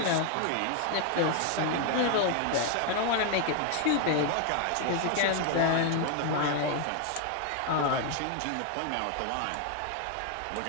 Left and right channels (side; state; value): both; different; correlation 0.01